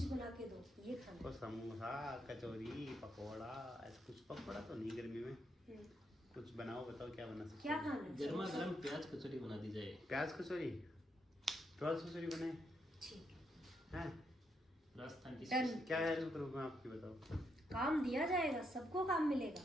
बना के दो, ये खाना। तो समोसा, कचौरी, पकौड़ा, ऐसा कुछ। पकौड़ा तो नहीं गर्मी में, हम्म, कुछ बनाओ, बताओ क्या बना सकते क्या हो? खाना है? गर्मा गर्म प्याज कचौरी बना दी जाए। प्याज कचौरी, प्याज कचौरी बनाए ठीक हैं? राजस्थान की डन। क्या हेल्प करूँ मैं आपकी, बताओ। काम दिया जाएगा, सबको काम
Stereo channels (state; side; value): normal; both; correlation 0.79